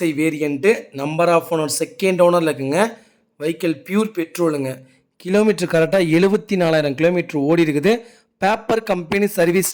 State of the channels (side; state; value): both; identical; correlation 1.00